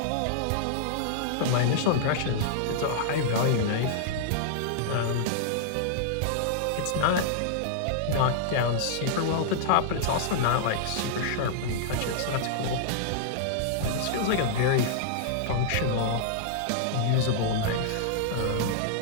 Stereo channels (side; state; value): both; different; correlation -0.01